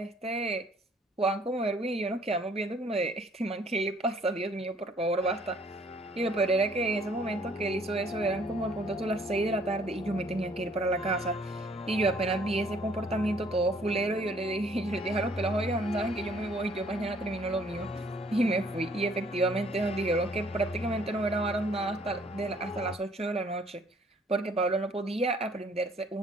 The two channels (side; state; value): both; normal; correlation 0.61